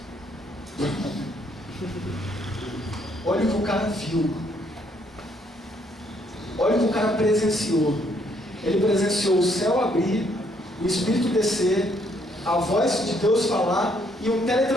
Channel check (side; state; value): both; normal; correlation 0.69